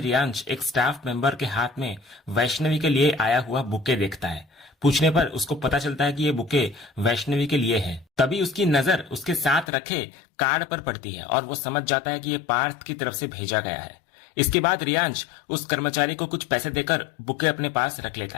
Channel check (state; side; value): drops out; right; at 9.7 s